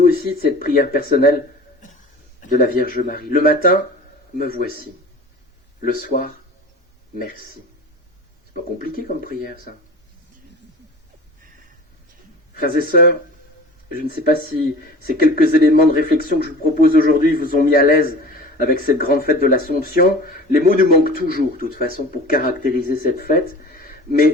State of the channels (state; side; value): normal; both; correlation 0.39